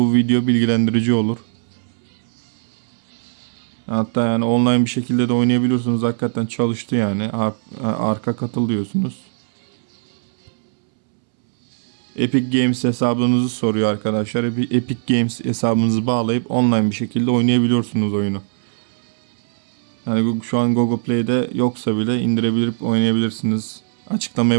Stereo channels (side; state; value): left; silent; 66 dB below the other